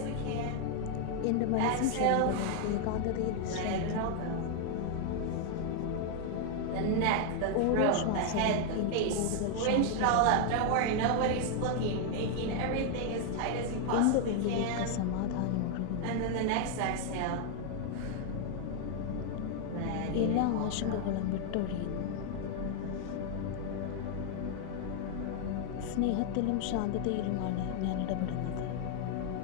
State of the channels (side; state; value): both; different; correlation 0.00